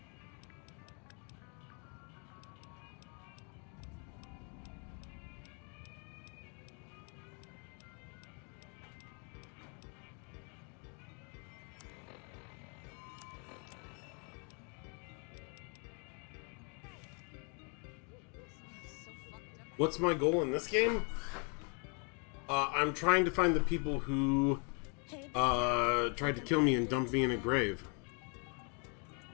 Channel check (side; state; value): right; quieter; 37.5 dB